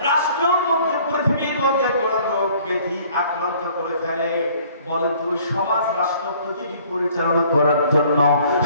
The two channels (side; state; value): both; inverted; correlation -0.57